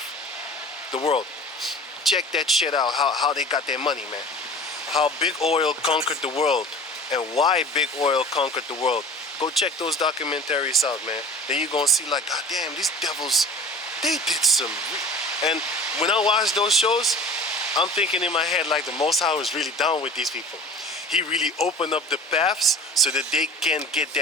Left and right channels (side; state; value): both; normal; correlation 0.39